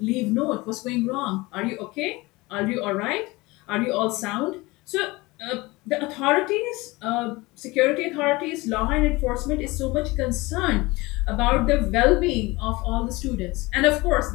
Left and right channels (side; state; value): right; quieter; 22.2 dB